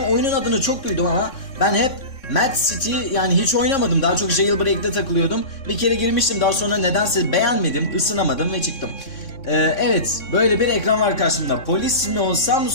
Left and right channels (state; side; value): late; right; 3.6 ms